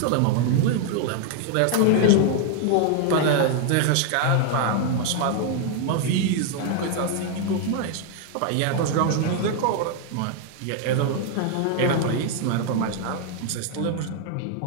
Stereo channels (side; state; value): both; different; correlation 0.00